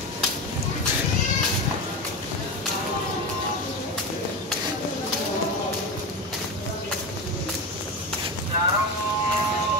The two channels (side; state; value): both; normal; correlation 0.21